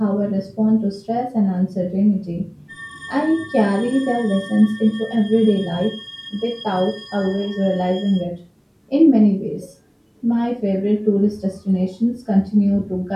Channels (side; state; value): both; identical; correlation 1.00